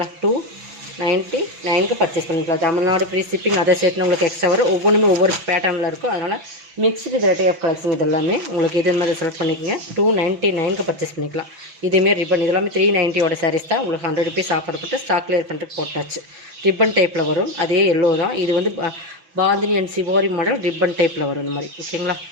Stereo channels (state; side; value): late; left; 6.0 ms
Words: 299க்கு பர்ச்சேஸ் பண்ணிக்கலாம். தமிழ்நாடு ஃப்ரீ ஷிப்பிங், அதை சேர்த்து உங்களுக்கு எக்ஸ்ட்ரா வரும். ஒவ்வொன்றுமே ஒவ்வொரு பேட்டர்னில் இருக்கும். அதனால் மிக்ஸ்டு வெரைட்டி ஆஃப் கலெக்ஷன். இது எல்லாமே உங்களுக்கு இது மாதிரி செலக்ட் பண்ணிக்கோங்க. 299க்கு பர்ச்சேஸ் பண்ணிக்கலாம். இதுமாரி ரிப்பன், இது எல்லாமே 390 சாரீஸ் தான். உங்களுக்கு 100 ருபீஸ் ஆஃபர் போட்டு ஸ்டாக் கிளியர் பண்ணுறதுக்கு போட்டாச்சு. ரிப்பன் டைப்பில் வரும். அதே எல்லோ தான். இது வந்து பாந்தினி அண்ட் சிவோரி மாடல் ரிப்பன் டைப்பில் வரும் இந்த மாதிரி, ஓகேங்களா.